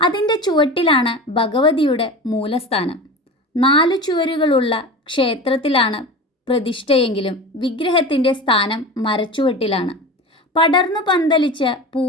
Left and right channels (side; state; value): both; normal; correlation 0.31